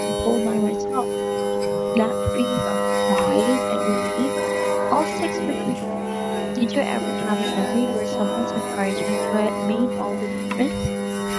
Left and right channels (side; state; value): both; identical; correlation 1.00